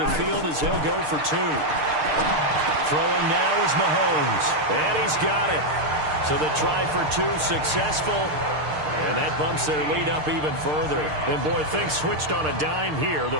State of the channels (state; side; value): late; left; 6.6 ms